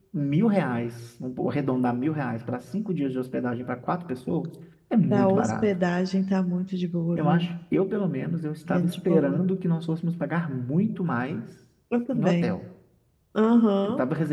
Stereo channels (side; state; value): both; identical; correlation 1.00